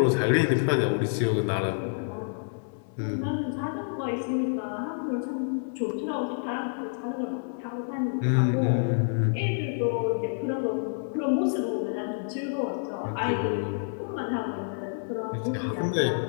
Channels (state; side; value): silent; right; digital silence